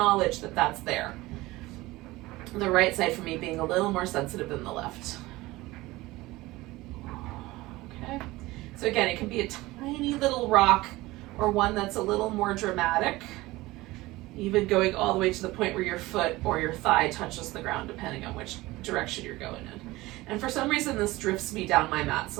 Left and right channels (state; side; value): quieter; left; 19.5 dB